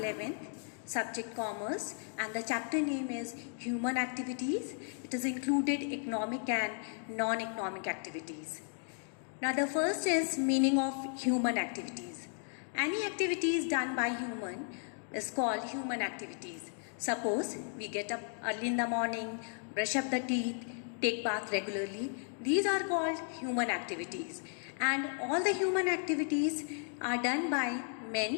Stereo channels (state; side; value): silent; right; 55 dB below the other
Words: subject commerce, and the chapter name is human activities. It is included economic and non-economic activities. Now the first is meaning of human activities. Any activities done by human is called human activities. Suppose we get up early in the morning, brush up the teeth, take bath regularly. These are called human activities. And all the human activities are done by